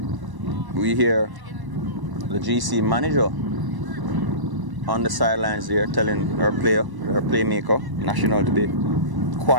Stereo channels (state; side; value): late; left; 1.0 ms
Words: We hear the GC manager on the sidelines there telling her playmaker, National, to be